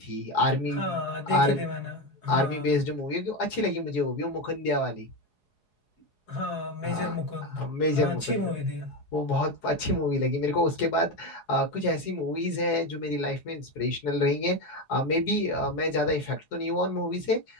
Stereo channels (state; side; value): late; right; 4.8 ms